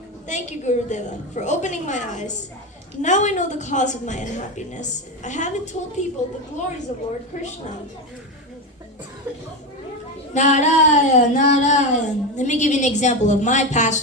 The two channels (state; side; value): normal; both; correlation 0.16